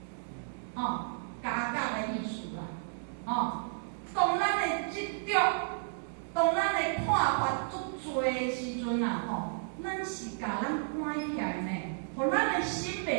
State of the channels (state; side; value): silent; left; digital silence